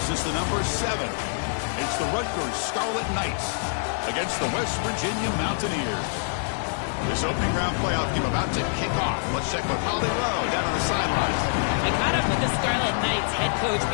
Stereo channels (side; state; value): right; silent; 61 dB below the other